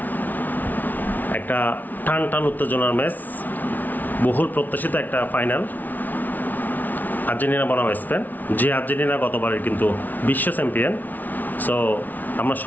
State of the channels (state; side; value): late; right; 0.081 ms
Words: একটা টান টান উত্তেজনার ম্যাচ, বহুল প্রত্যাশিত একটা ফাইনাল। আর্জেন্টিনা বনাম স্পেন, যে আর্জেন্টিনা গতবারের কিন্তু বিশ্ব চ্যাম্পিয়ন। সো আমরা